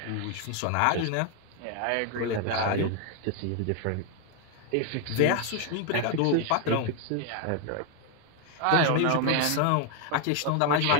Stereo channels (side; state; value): both; different; correlation 0.01